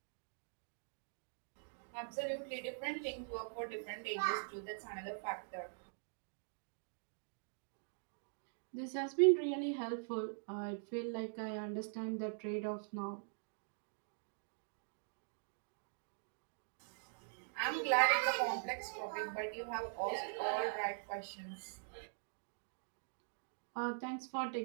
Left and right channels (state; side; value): silent; left; digital silence